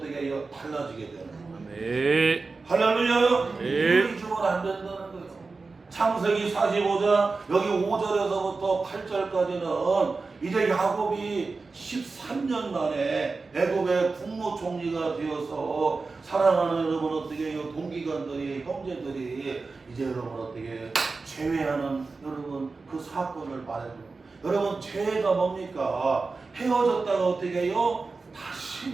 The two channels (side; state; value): left; quieter; 4.0 dB